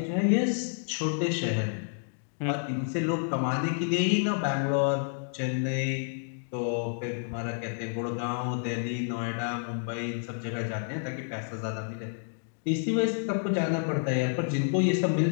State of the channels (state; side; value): silent; right; digital silence